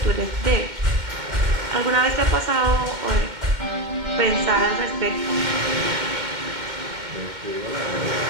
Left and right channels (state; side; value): late; left; 2.1 ms